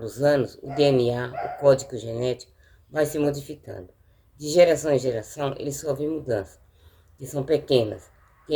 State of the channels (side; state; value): both; identical; correlation 1.00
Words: anos, o DNA, o código genético, vai se modificando. De geração em geração, ele sofre mudanças, que são pequenas, que